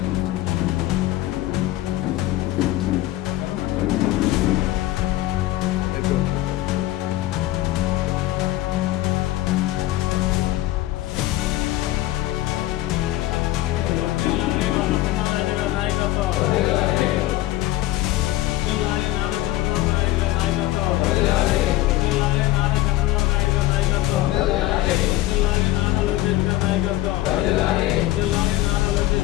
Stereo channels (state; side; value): quieter; right; 16.1 dB